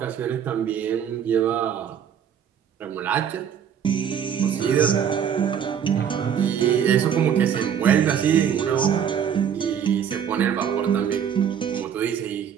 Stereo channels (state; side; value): quieter; left; 8.3 dB